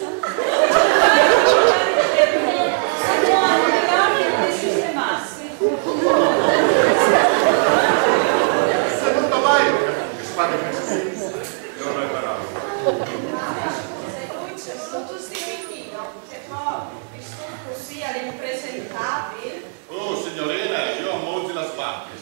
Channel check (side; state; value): left; silent; 66 dB below the other